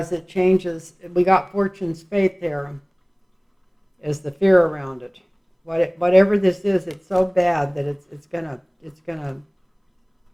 it changes, we got Fortune's Fate there as the fear around it. Whatever this is, it's so bad that it's gonna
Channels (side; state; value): both; identical; correlation 1.00